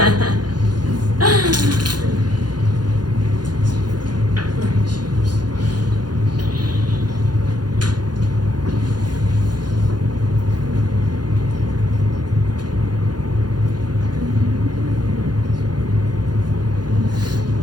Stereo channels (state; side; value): late; left; 0.70 ms